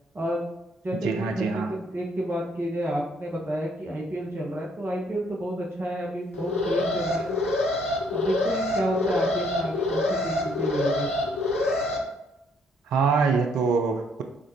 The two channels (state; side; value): normal; both; correlation 0.67